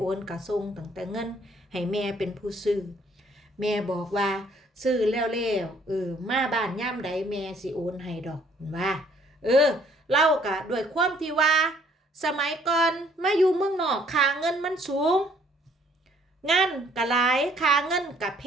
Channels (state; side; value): normal; both; correlation 0.62